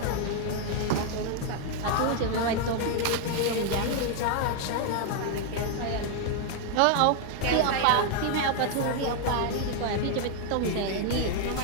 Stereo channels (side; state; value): both; different; correlation 0.00